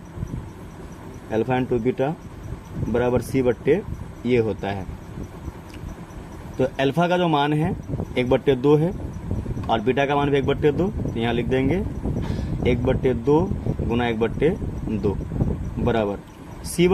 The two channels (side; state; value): both; identical; correlation 1.00